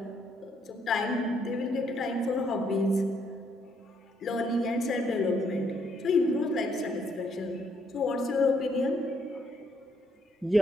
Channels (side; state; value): both; normal; correlation 0.71